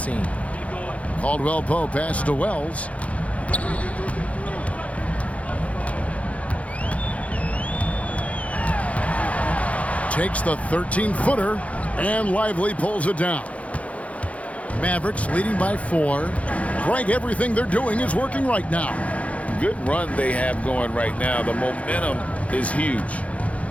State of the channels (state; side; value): late; right; 0.065 ms